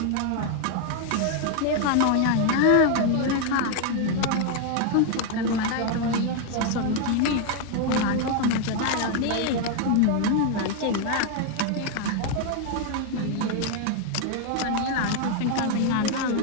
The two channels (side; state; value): both; different; correlation 0.01